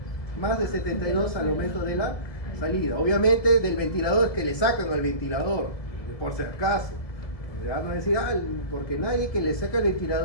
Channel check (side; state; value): right; late; 1.8 ms